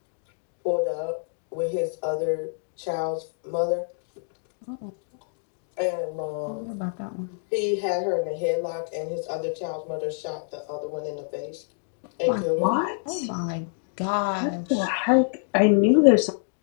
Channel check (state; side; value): silent; right; digital silence